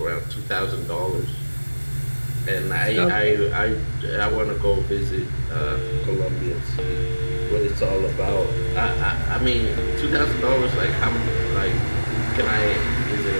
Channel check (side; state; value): both; inverted; correlation -1.00